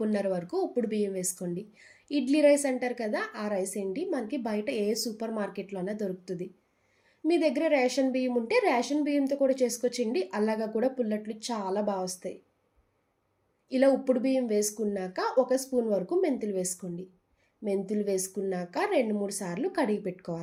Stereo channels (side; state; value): both; identical; correlation 1.00